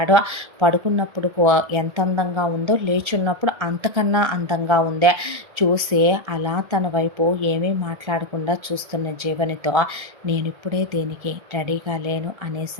పడుకున్నప్పుడు ఎంత అందంగా ఉందో లేచున్నప్పుడు అంతకన్నా అందంగా ఉందే. చూసి అలా తన వైపు ఏమీ మాట్లాడకుండా చూస్తున్న జీవనితో నేను ఇప్పుడే దీనికి రెడీగా లేను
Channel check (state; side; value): late; left; 1.3 ms